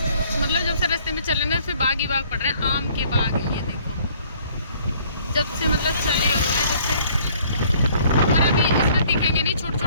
मतलब जब से रास्ते में चले ना, फिर बाग ही बाग पड़ रहे हैं। आम के बाग है ये देखो, जब से मतलब चले हुए हैं, जब से। और अभी इसमें दिखेंगे नहीं, छोटे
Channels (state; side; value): inverted; both; correlation -0.59